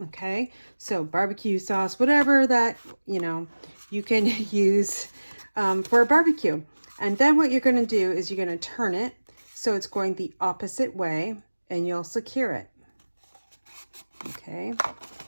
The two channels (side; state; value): both; inverted; correlation -1.00